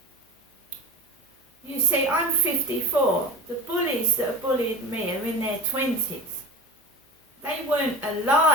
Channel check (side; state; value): both; normal; correlation 0.31